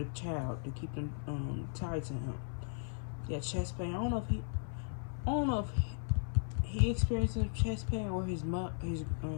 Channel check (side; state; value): right; silent; 53 dB below the other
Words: child to keep them tied to him. Yeah, chest pain. I don't know if he experienced chest pain or his